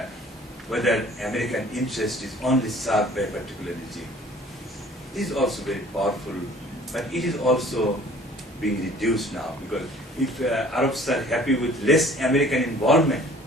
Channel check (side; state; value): both; normal; correlation 0.52